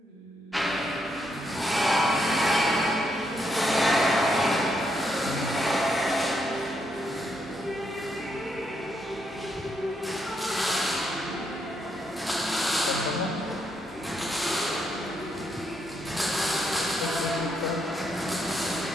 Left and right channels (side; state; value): both; normal; correlation 0.78